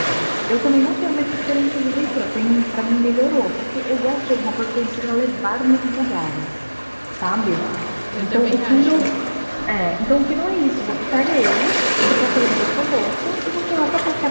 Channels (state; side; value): inverted; both; correlation -1.00